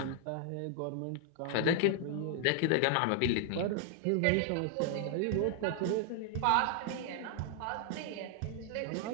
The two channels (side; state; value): both; different; correlation 0.00